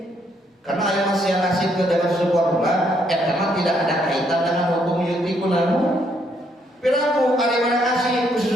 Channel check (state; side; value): normal; both; correlation 0.72